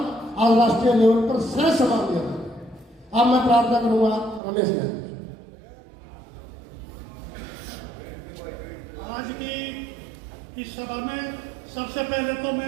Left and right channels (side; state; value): left; drops out; at 4.4 s